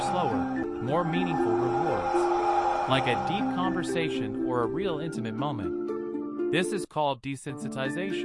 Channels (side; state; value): both; identical; correlation 1.00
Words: slower, more meaningful rewards, like a deep conversation or a real intimate moment. This is called